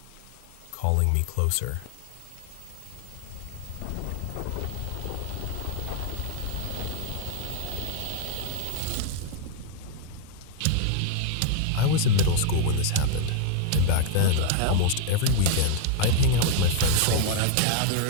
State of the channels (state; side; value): different; both; correlation 0.00